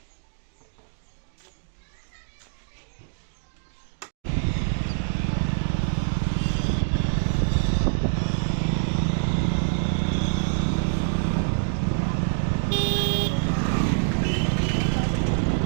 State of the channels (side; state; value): left; silent; digital silence